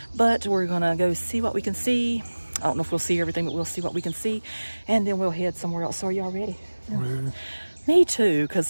but we're gonna go see what we can see. I don't know if we'll see everything, but we'll see what we can see, and then we'll head somewhere else. So are y'all ready? Ready. Me too,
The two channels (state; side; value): inverted; both; correlation -1.00